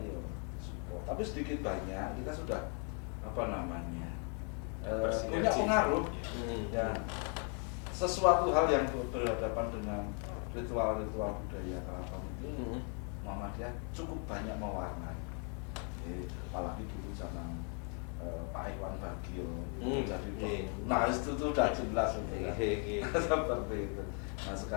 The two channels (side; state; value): right; quieter; 39.4 dB